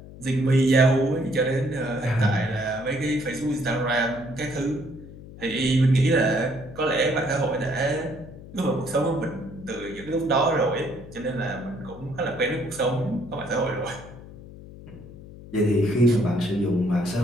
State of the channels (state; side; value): noise; left; hum, 16 dB below the sound